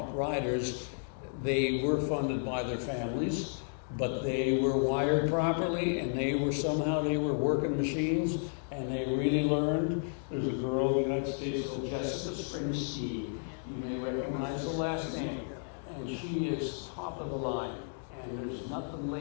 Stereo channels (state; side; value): silent; right; digital silence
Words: riders, they were funded by their families, but they were wired properly, and they were working machines, and they really learned. There's a girl in the United States called Jessica Springsteen. You may recognize the last name, and she is top of the line, and there's nothing